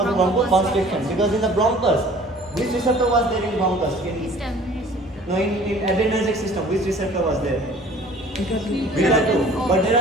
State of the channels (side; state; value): both; normal; correlation 0.50